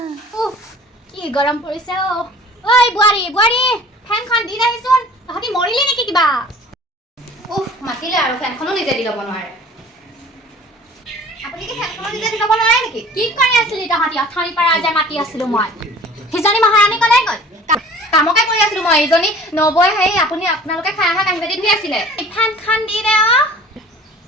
উফ কি গৰম পৰিছে অ। ঐ বোৱাৰী ফেনখন দি আহিছোন। তহঁতি মৰিলি নেকি কিবা? উফ মাতিলে আৰু ফেনখনো নিজে দি ল'ব নোৱাৰে। আপুনি কি ফেনখনো নিজে দি ল'ব নোৱাৰে নেকি? কি কৰি আছিলি তহঁতি? অথনিৰ পৰা যে মাতি আছিলো মই। সিজনী মহাৰাণী কলৈ গ'ল? কামকে কৰি আছিলো মই। এইজনী নবৈ আপোনালোকে খাই অহা কাঁহী বাতি ধুই আছিলে। ফেনখন দি দে অ।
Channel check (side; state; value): both; normal; correlation 0.47